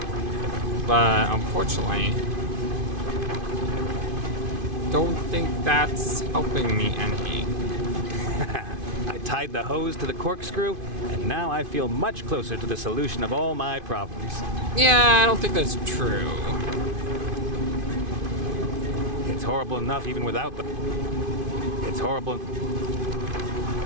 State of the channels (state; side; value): late; left; 2.5 ms